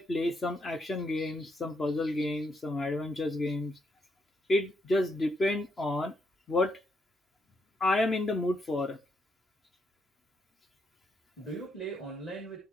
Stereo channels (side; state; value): both; normal; correlation 0.77